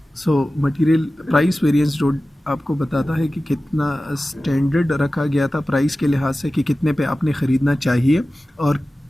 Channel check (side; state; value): both; normal; correlation 0.95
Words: So material price variance जो आपको बताता है कि कितना स्टैंडर्ड रखा गया था प्राइस के लिहाज से कि कितने पे आपने ख़रीदना चाहिए और